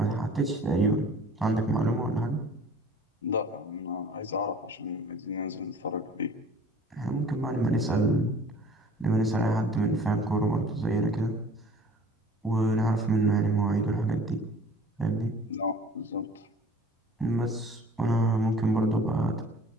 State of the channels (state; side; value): normal; both; correlation 0.48